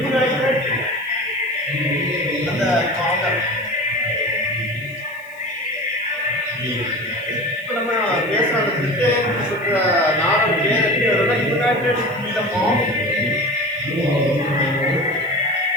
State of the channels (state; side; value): noise; left; hiss, 27 dB below the sound